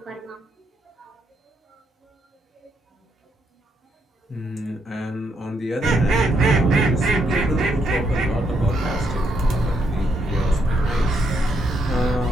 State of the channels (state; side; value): normal; both; correlation 0.76